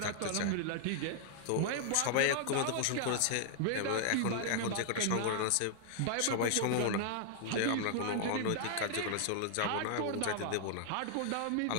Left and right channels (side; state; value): both; different; correlation 0.00